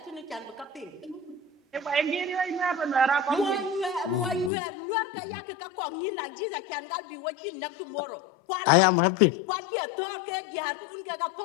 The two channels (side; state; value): right; drops out; at 4.5 s